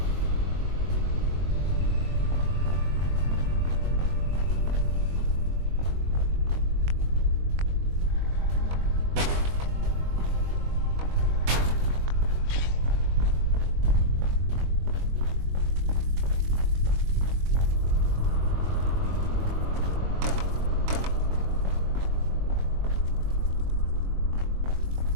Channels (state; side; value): late; left; 22 ms